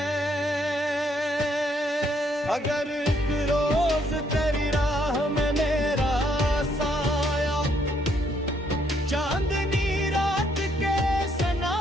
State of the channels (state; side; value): normal; both; correlation 0.70